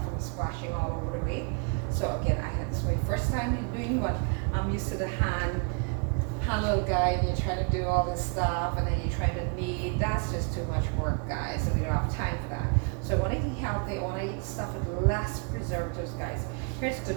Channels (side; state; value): left; quieter; 35.9 dB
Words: from splashing all over the way. So again, this is my first time doing what I'm used to the hand little guy, and you're trying to do all this stuff, and then you're trying to knead. That's just too much work, guys, and we don't have time for that. So I want to eat healthy. I want to eat stuff with less preservatives, guys. Here's the